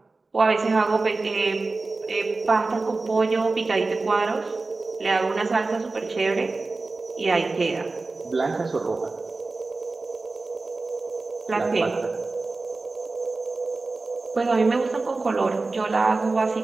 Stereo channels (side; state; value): left; quieter; 3.6 dB